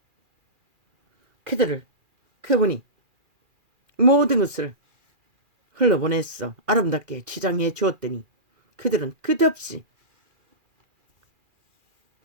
그분이 모든 것을 흘러보냈어. 아름답게 치장해 주었더니 그들은 끝없이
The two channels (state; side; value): late; left; 2.4 ms